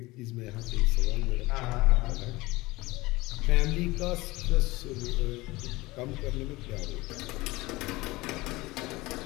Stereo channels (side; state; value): right; quieter; 21.0 dB